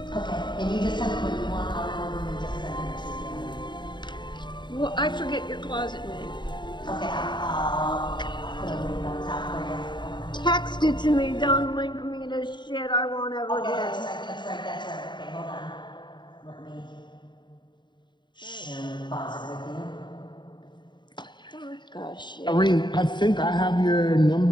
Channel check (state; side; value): late; right; 0.22 ms